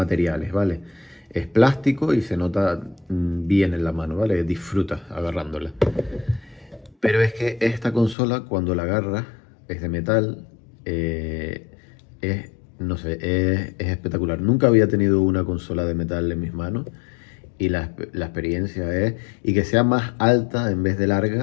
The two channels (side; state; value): right; drops out; at 8.2 s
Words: ¿vale? Es plástico y se nota bien en la mano, ¿vale? Disfrutas agarrándola. Pero es que esta consola, cuando la agarras, es de metal, no sé, es espectacular. Nunca había tenido una consola de metal en mis manos, y la experiencia es, y que sea más alta en vez de